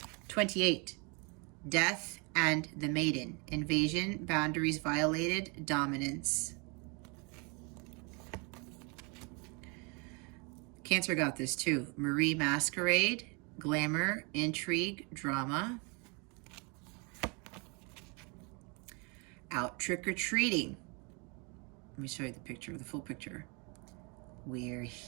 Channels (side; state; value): left; quieter; 32.1 dB